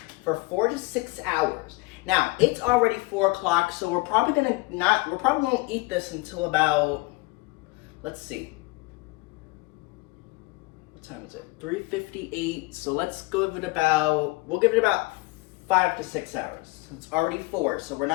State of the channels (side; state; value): right; quieter; 23.7 dB